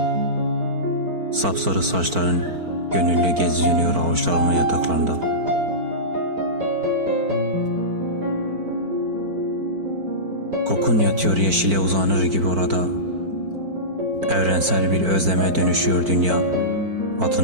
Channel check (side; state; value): left; late; 4.5 ms